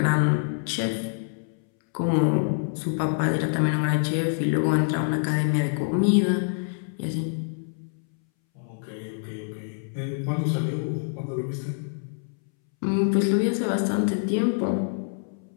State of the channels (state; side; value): silent; right; 61 dB below the other